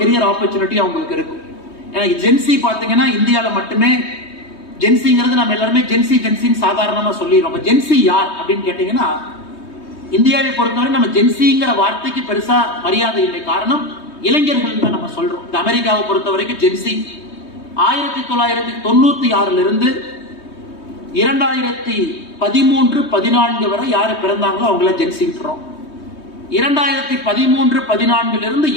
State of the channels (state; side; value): late; right; 3.2 ms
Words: கெரியர் ஆப்பர்ச்சுனிட்டி அவங்களுக்கு இருக்கும். எனக்கு ஜென்சி பாத்தீங்கன்னா இந்தியாவில மட்டுமே ஜென்சிங்கிறது நம்ம எல்லாருமே ஜென்சின்னு சாதாரணமா சொல்லிடுறோம். ஜென்சி யார் அப்படின்னு கேட்டீங்கன்னா, இந்தியாவை பொறுத்தவரை நம்ம ஜென்சிங்கிற வார்த்தைக்கு பெருசா மரியாதை இல்லை. காரணம், இளைஞர்கள் தான் நம்ம சொல்றோம். இந்த அமெரிக்காவை பொறுத்த வரைக்கும் ஜென்சி 1996 இருந்து 2013-14 வரை யாரு பிறந்தாங்களோ அவங்கள ஜென்சின்றோம். 2013-14 இருந்து